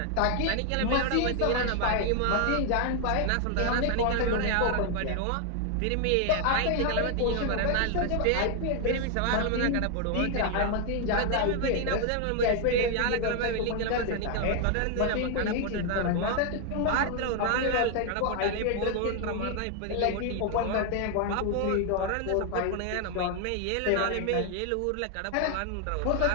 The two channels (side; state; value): both; different; correlation 0.00